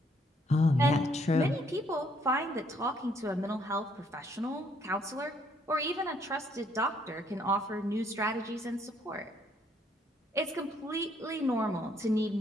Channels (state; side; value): normal; both; correlation 0.67